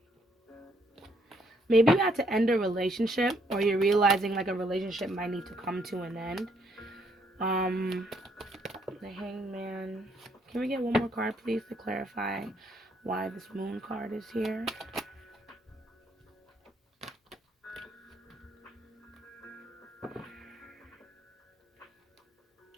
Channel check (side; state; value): both; normal; correlation 0.70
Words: Maybe you had to end a relationship, or you're realizing like a relationship might need to come to an end. The Hangman. Can we get one more card, please, to clarify why this moon card is here?